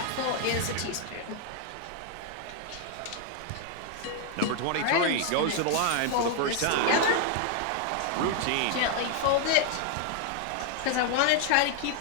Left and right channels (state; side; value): different; both; correlation 0.00